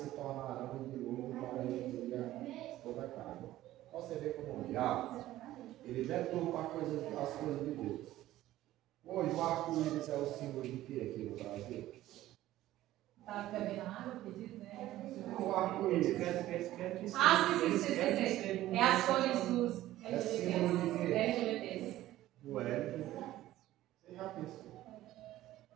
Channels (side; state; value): left; quieter; 14.8 dB